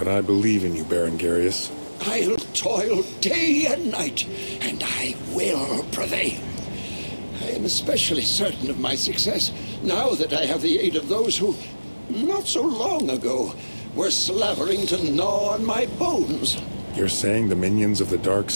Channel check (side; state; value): both; inverted; correlation -1.00